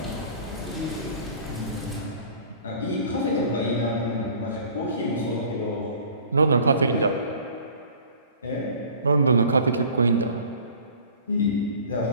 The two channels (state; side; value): inverted; both; correlation -0.47